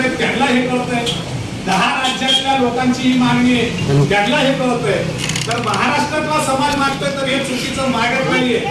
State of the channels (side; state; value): both; identical; correlation 1.00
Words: त्यांना हे कळतंय, 10 राज्यातल्या लोकांची ही मागणी आहे त्यांना हे कळतंय, तर महाराष्ट्रातला समाज मागतोय तर हे चुकीचं मागत नाहीये.